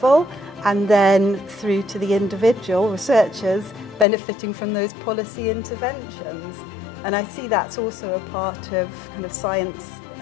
and then through to the individual researchers benefiting from those policy interventions. And I see that's also a part of kind of science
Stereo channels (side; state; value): right; drops out; at 4.0 s